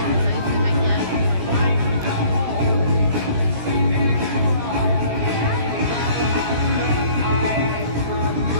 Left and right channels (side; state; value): left; late; 17 ms